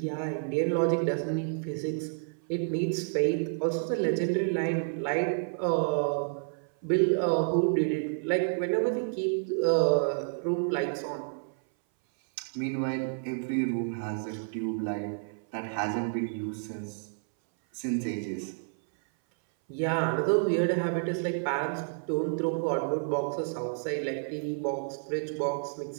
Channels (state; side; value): silent; left; 58 dB below the other